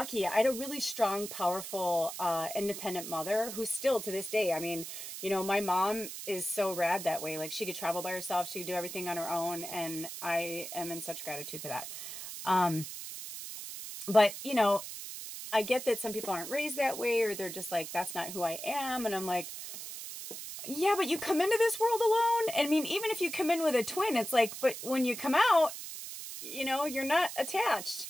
I had a really strong, powerful, independent mother who's still to this day. I mean, my mom is so rad that way. Like, she could travel by herself. She could do everything on her own. And I am in such gratitude for that. But, I get that some people aren't raised that way, or they're just like, that's not who I am. And I'm like, yeah, but you come into this world alone. And I mean, even if you come in with a twin, it's like, but when you come out, you're not attached.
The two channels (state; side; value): noise; right; hiss, 9 dB below the sound